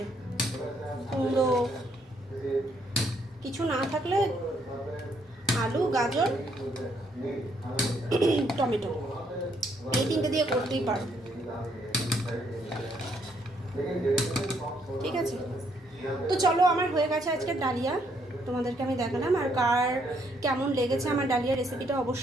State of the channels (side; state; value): both; normal; correlation 0.71